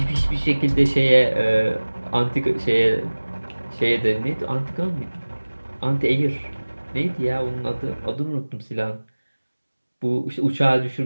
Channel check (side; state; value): both; inverted; correlation -1.00